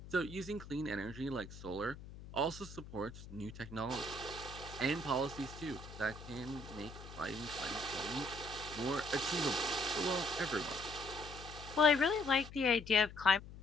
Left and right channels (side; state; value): left; noise; hum, 14 dB below the sound